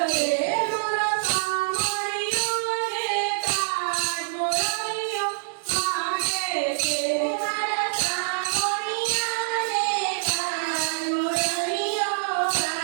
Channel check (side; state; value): left; silent; digital silence